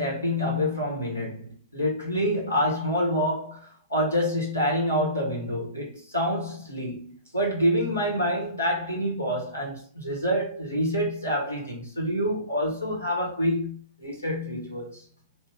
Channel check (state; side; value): inverted; both; correlation -0.43